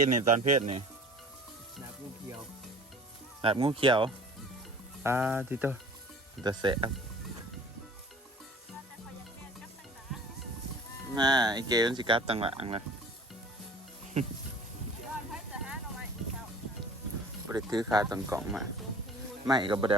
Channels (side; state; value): both; normal; correlation 0.46